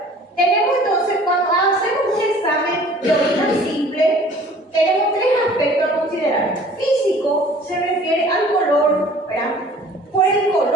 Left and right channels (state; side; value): normal; both; correlation 0.50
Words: tenemos entonces, cuando hacemos un examen de orina simple, tenemos tres aspectos a considerar. Físico se refiere al color, ¿verdad? Por el